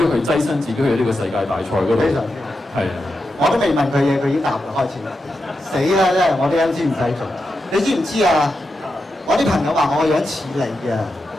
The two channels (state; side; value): normal; both; correlation 0.88